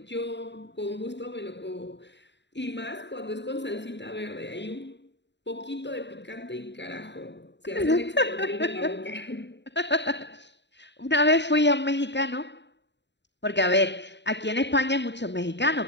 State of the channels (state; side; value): late; right; 0.52 ms